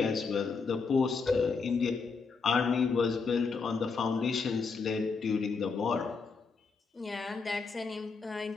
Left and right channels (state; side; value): quieter; right; 4.8 dB